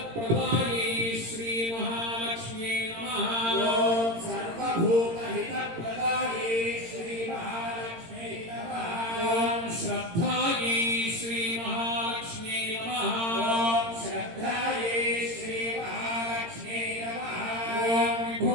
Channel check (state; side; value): late; left; 18 ms